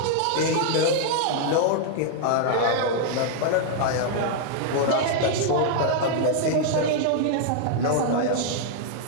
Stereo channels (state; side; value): different; both; correlation -0.01